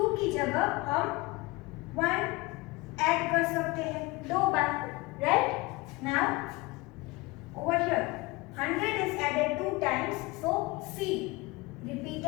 की जगह हम 1 ऐड कर सकते हैं 2 बार, right? Now over here 100 is added 2 times, so C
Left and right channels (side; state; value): right; quieter; 23.1 dB